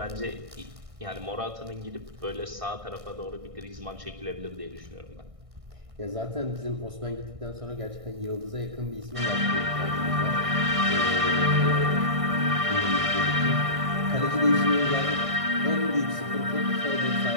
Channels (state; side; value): late; left; 1.6 ms